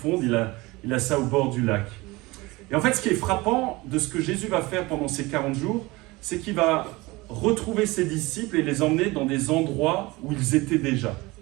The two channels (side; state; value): left; quieter; 22.1 dB